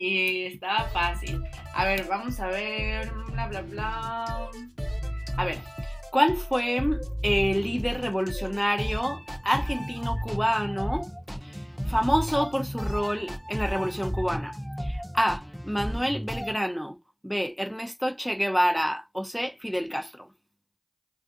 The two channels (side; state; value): both; identical; correlation 1.00